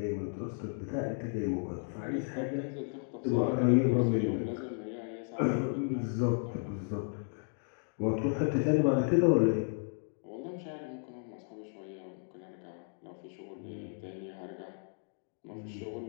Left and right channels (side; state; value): right; silent; 55 dB below the other